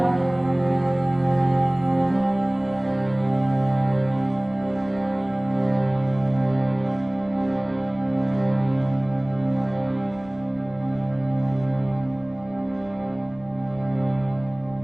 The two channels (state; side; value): noise; left; rumble, 27 dB below the sound